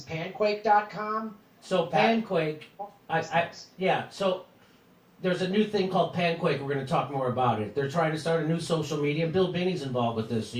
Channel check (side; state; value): both; identical; correlation 1.00